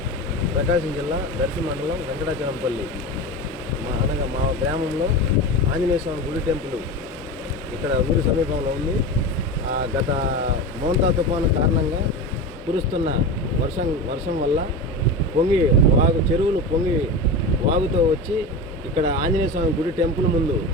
ప్రకాశం జిల్లా దర్శి మండలం వెంకటాచలంపల్లి అనగా మా గ్రామంలో ఆంజనేయ స్వామి గుడి టెంపుల్ ఇక్కడ ఊరి సమీపంలో ఉంది. గత మోంతా తుఫాను కారణంగా కురుస్తున్న వర్షం వల్ల చెరువులు పొంగి వాగుతో వచ్చి ఇక్కడ ఆంజనేయ స్వామి గుడి టెంపుల్ ముందు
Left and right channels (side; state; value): both; normal; correlation 0.25